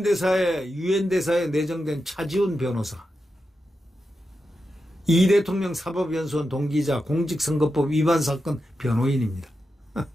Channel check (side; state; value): both; normal; correlation 0.89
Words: 내정된 차지훈 변호사, 이 대통령 사법연수원 동기이자 공직선거법 위반 사건 변호인입니다.